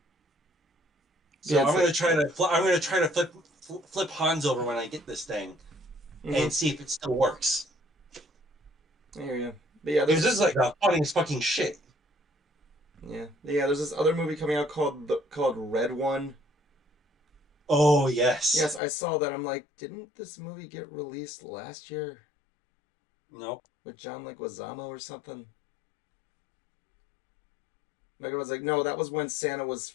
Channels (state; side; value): drops out; right; at 18.8 s